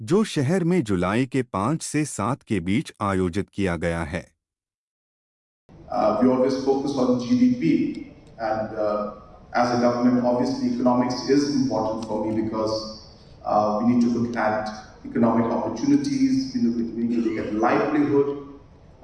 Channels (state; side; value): identical; both; correlation 1.00